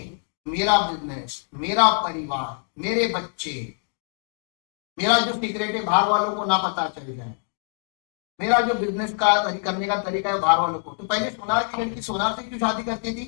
मेरा बिजनेस, मेरा परिवार, मेरे बच्चे, मेरा जो सीक्रेट है बाहर वालों को ना पता चल जाए, मेरा जो बिजनेस का करने का तरीका है बाहर वालों को। तो पहले सोनार की लड़की सोनार से क्यों शादी करती थी,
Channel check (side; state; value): right; silent; 60 dB below the other